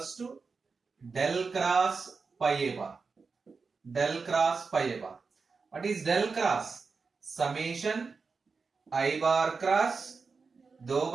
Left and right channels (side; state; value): left; quieter; 4.7 dB